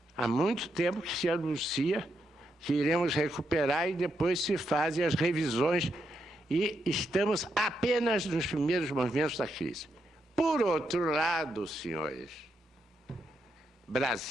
há muito tempo que se anuncia que iremos recuperar e depois se fazem as revisões e estamos apenas nos primeiros momentos da crise. Por outro lado, senhores,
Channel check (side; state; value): both; normal; correlation 0.81